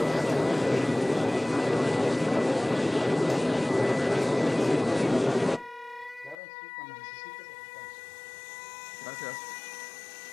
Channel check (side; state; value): right; drops out; at 6.4 s